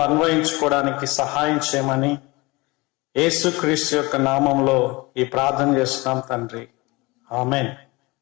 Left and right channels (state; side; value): quieter; right; 23.9 dB